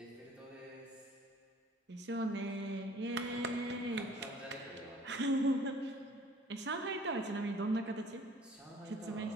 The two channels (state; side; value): normal; both; correlation 0.52